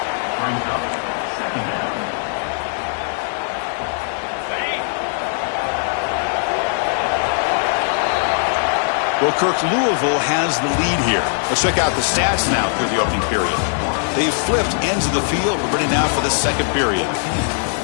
Well, Kirk, Louisville has the lead here. Let's check out the stats now through the opening period. They've flipped ends of the field. We're ready now for the second period.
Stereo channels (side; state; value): right; silent; digital silence